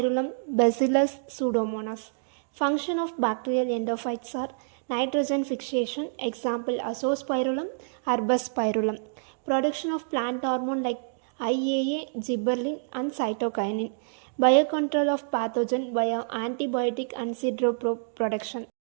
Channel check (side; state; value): left; silent; digital silence